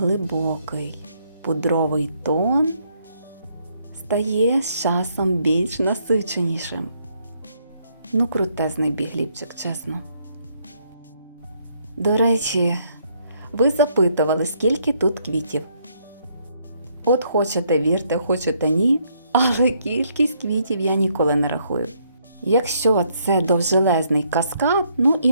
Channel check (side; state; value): both; inverted; correlation -0.71